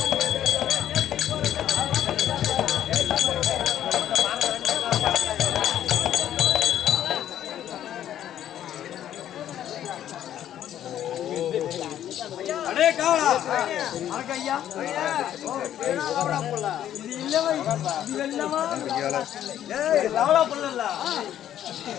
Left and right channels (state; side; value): quieter; right; 11.1 dB